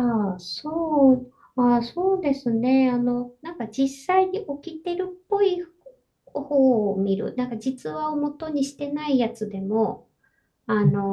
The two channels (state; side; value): identical; both; correlation 1.00